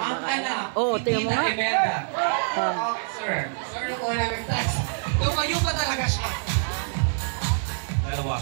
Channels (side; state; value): left; silent; 61 dB below the other